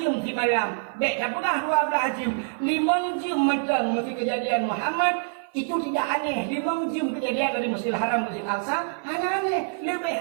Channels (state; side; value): silent; left; 57 dB below the other